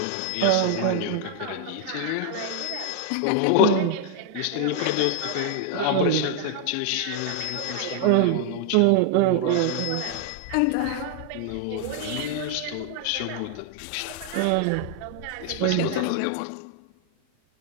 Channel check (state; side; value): different; both; correlation 0.00